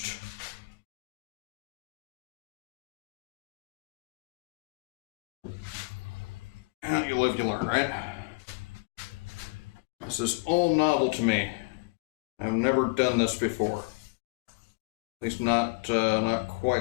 Yeah, you live, you learn, right? This is all novel to me. I've never done this before. At least not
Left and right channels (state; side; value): quieter; right; 28.7 dB